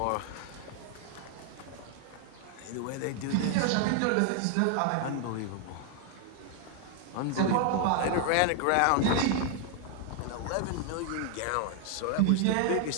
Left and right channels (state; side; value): different; both; correlation 0.00